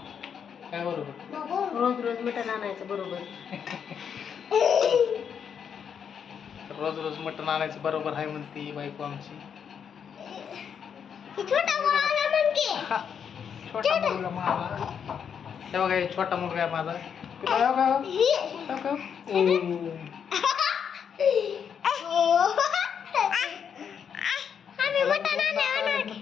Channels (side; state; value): right; quieter; 7.5 dB